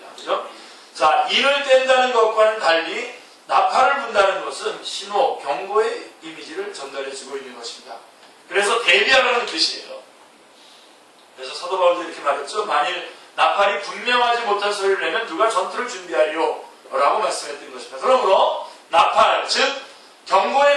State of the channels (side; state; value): both; identical; correlation 1.00